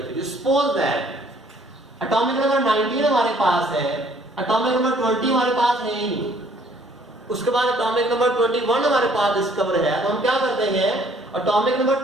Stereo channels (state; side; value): normal; both; correlation 0.60